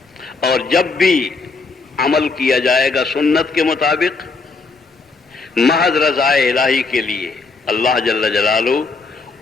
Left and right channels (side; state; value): right; quieter; 4.1 dB